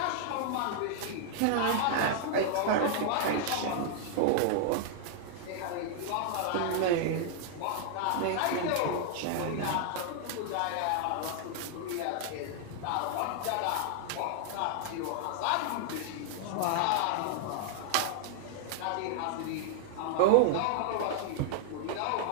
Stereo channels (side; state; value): both; different; correlation 0.00